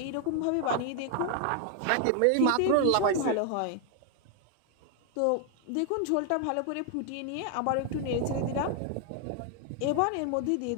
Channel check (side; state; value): both; different; correlation 0.00